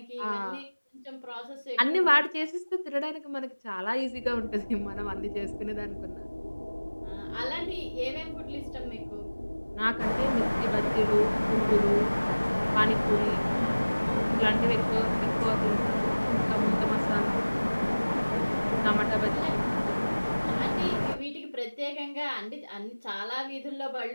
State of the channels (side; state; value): both; inverted; correlation -1.00